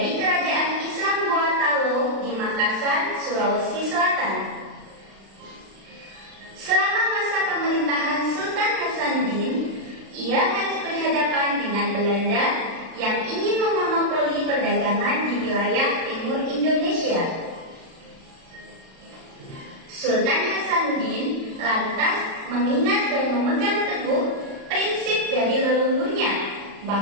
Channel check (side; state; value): left; late; 36 ms